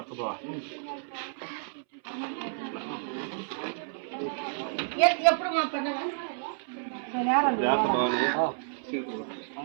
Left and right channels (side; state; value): left; silent; 58 dB below the other